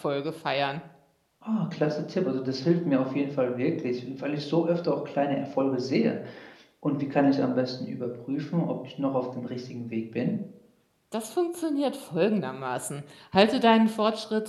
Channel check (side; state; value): both; identical; correlation 1.00